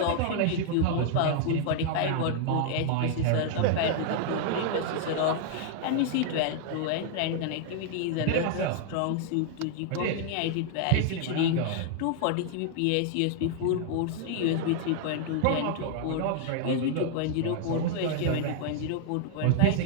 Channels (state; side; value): different; both; correlation 0.00